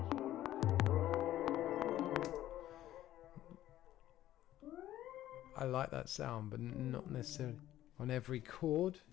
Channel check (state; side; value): quieter; right; 13.5 dB